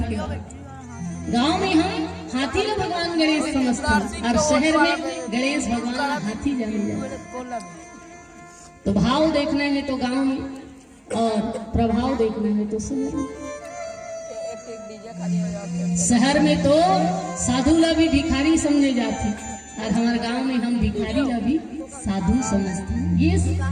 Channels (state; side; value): identical; both; correlation 1.00